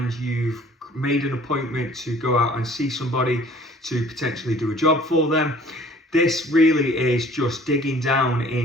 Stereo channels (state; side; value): normal; both; correlation 0.52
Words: you've made an appointment to go out and see somebody to potentially do a job for them. This really is just digging down